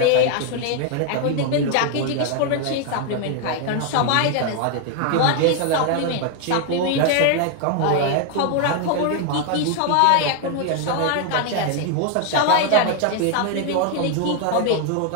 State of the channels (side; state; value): both; different; correlation 0.00